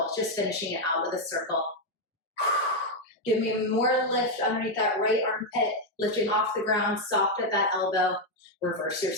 just finishing it out with a circle. Give me more lift underneath that right armpit, lifting off the ground, soft at that elbow. Reverse your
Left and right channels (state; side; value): normal; both; correlation 0.03